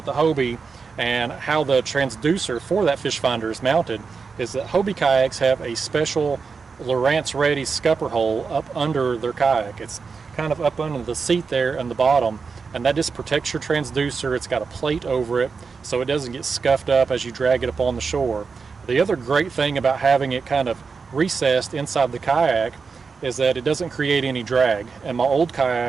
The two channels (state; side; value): quieter; left; 5.1 dB